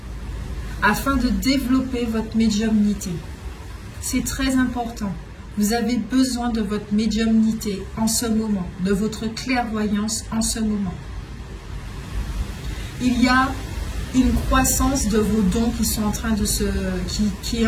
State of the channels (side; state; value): both; identical; correlation 1.00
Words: afin de développer votre médiumnité. C'est très important. Vous avez besoin de votre médiumnité en ce moment, de votre clairvoyance en ce moment. Il y a une croissance de vos dons qui sont en train de qui est